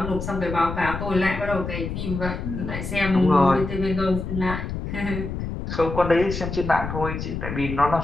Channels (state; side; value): noise; left; rumble, 5 dB below the sound